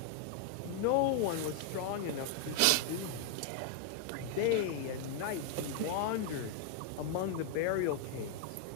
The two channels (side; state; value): both; different; correlation 0.00